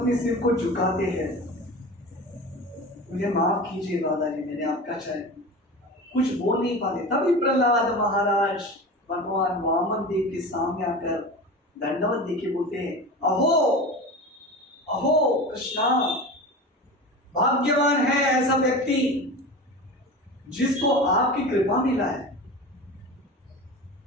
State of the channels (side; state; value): both; normal; correlation 0.31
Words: सिर को झुकाते हैं, मुझे माफ कीजिए दादाजी, मैंने आपका चाहे, कुछ बोल नहीं पाते। तभी प्रहलाद महाराज भगवान वामन देव के सामने आकर दंडवत देके बोलते हैं, अहो अहो कृष्णा, भाग्यवान है ऐसा व्यक्ति जिसको आपकी कृपा मिला है।